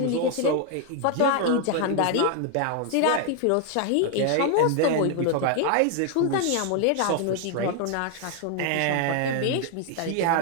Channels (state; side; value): different; both; correlation 0.00